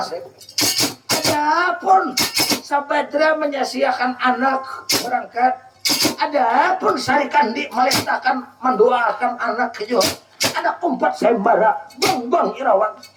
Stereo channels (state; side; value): identical; both; correlation 1.00